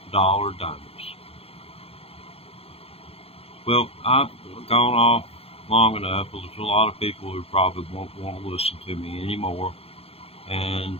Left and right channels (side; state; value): right; late; 0.28 ms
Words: dollar donors. Well, I've gone off long enough. There's a lot of people who probably won't want to listen to me anymore.